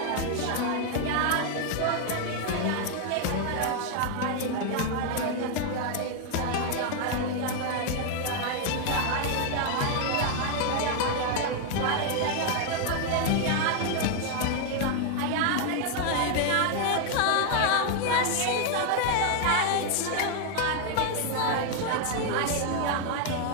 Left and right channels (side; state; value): both; different; correlation 0.01